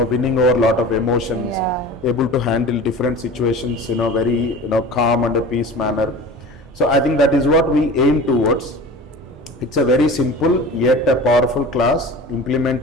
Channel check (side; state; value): both; normal; correlation 0.37